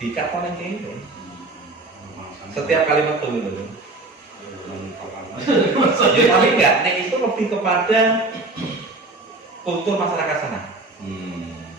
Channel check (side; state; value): left; quieter; 3.1 dB